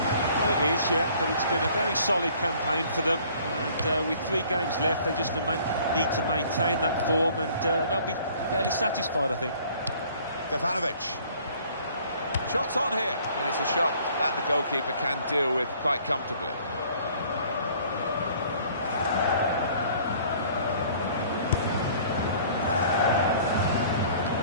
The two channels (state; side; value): inverted; both; correlation -0.55